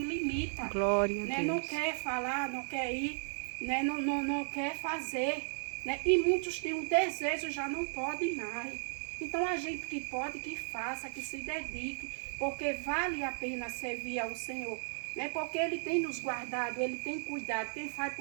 Glória a né? Não Deus. quer falar, não quer ir, né? Não quer fazer. Né? E muitos têm um desejo, já não podem mais. Então a gente que pode, que faça, que se dedique, porque vale a pena servir ao Senhor. Né? Porque Ele tem nos guardado, Ele tem cuidado. Quem faz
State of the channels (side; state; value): left; silent; digital silence